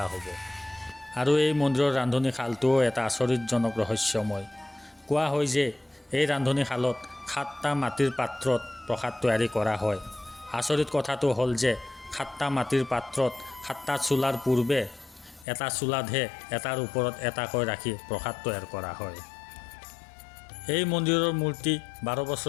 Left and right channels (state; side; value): drops out; right; at 15.5 s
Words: হ'ব। আৰু এই মন্দিৰৰ ৰান্ধনীশালটোও এটা আচৰিতজনক ৰহস্যময়। কোৱা হয় যে এই ৰান্ধনীশালত 7টা মাটিৰ পাত্ৰত প্ৰসাদ তৈয়াৰী কৰা হয়। আচৰিত কথাটো হ'ল যে 7টা মাটিৰ পাত্ৰত 7টা চুলাৰ পূৰ্বে এটা চুলাতহে এটাৰ ওপৰত এটাকৈ ৰাখি প্ৰসাদ তৈয়াৰ কৰা হয়। এই মন্দিৰৰ মূৰ্তি 12